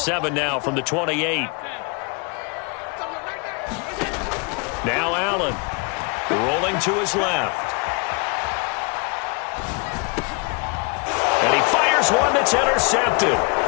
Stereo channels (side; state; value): right; quieter; 31.7 dB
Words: now from the 28. Now Allen rolling to his left. And he fires one that's intercepted.